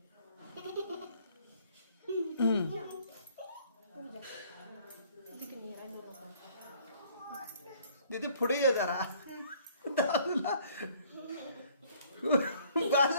दीदी पुढे ये जरा. दादूला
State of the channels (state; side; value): inverted; both; correlation -0.59